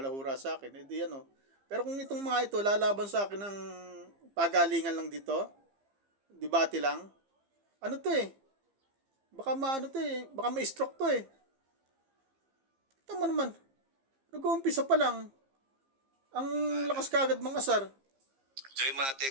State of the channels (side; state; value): left; late; 15 ms